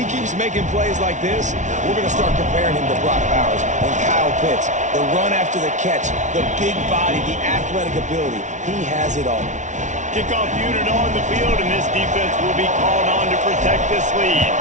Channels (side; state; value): left; late; 0.36 ms